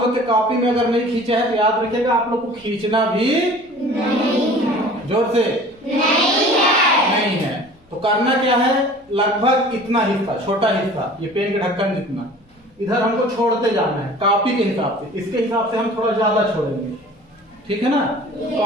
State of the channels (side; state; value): both; normal; correlation 0.45